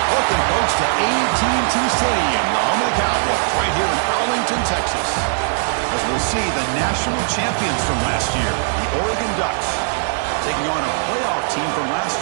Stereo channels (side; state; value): left; silent; digital silence